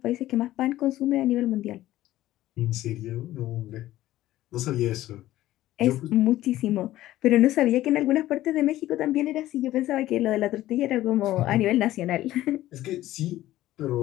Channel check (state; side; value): quieter; right; 14.9 dB